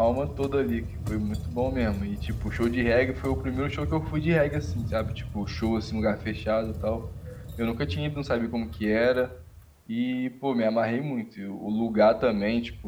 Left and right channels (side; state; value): both; identical; correlation 1.00